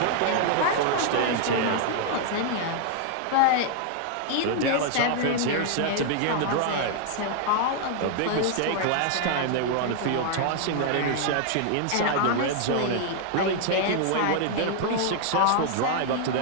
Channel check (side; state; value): both; different; correlation 0.00